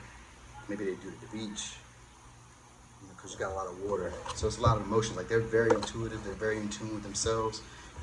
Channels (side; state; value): both; identical; correlation 1.00